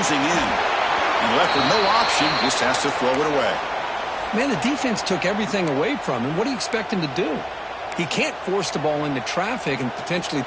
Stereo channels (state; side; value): identical; both; correlation 1.00